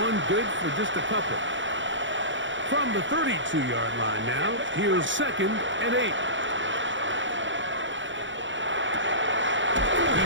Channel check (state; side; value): late; left; 0.55 ms